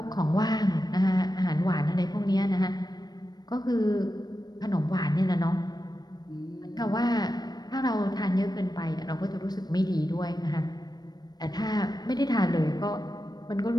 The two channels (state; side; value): late; right; 0.19 ms